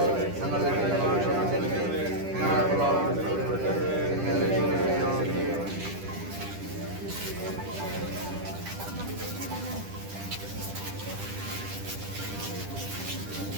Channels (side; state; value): left; late; 10 ms